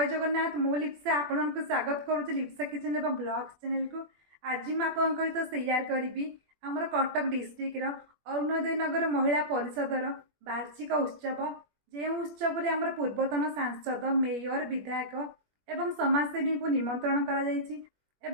जगन्नाथ मु लिप्सा आपण को स्वागत करुच्ची लिप्सा किचन एवं ब्लॉग्स चैनल को। आज मैं आपन सहित शेयर करी आमर कटक डिस्ट्रिक्ट अरुणोदय नगर महिला परिषदर वार्षिक उत्सव जो उत्सव में आमर पूर्वतन सांसद मेयर विधायक एवं समाजसेवी को निमंत्रण करा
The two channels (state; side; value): late; left; 21 ms